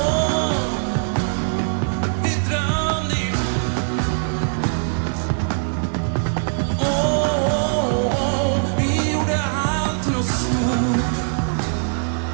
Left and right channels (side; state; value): left; silent; digital silence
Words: Vi drömde ihop. Vi gjorde allt till något stort.